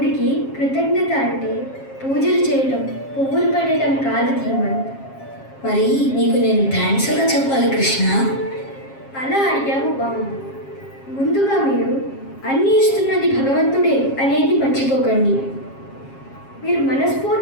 కృతజ్ఞత అంటే పూజలు చేయటం, పువ్వులు పెట్టడం కాదు ధీమన్. మరి నీకు నేను థ్యాంక్స్ ఎలా చెప్పాలి కృష్ణ? అలా అడిగావు బాగుంది. ముందుగా మీరు అన్నీ ఇస్తున్నది భగవంతుడే అనేది మర్చిపోకండి. మీరు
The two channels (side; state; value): right; late; 7.4 ms